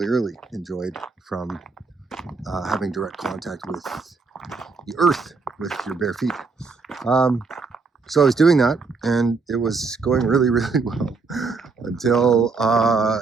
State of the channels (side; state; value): left; quieter; 4.4 dB